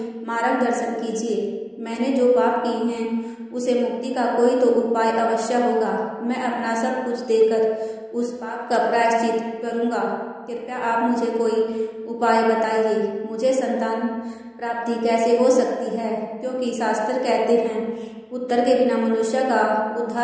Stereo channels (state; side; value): identical; both; correlation 1.00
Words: मार्गदर्शन कीजिए। मैंने जो पाप किए हैं उसे मुक्ति का कोई तो उपाय अवश्य होगा। मैं अपना सब कुछ देकर उस पाप का प्रायश्चित करूँगा। कृपया आप मुझे कोई उपाय बताइए। मुझे संतान प्राप्ति कैसे हो सकती है? क्योंकि शास्त्र कहते हैं पुत्र के बिना मनुष्य का